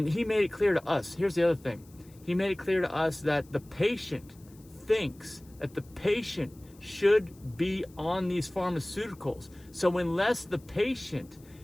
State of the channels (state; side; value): noise; left; hiss, 27 dB below the sound